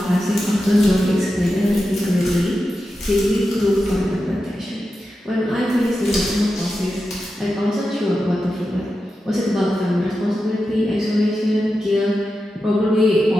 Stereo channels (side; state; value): both; normal; correlation 0.90